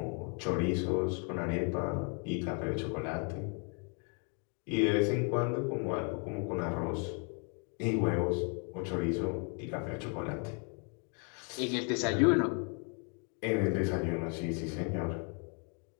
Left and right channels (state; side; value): quieter; right; 38.8 dB